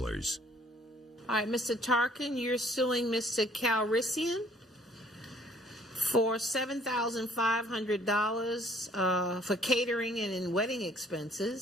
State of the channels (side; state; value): both; normal; correlation 0.59